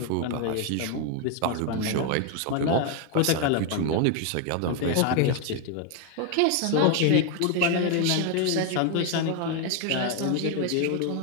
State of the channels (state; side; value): different; both; correlation 0.01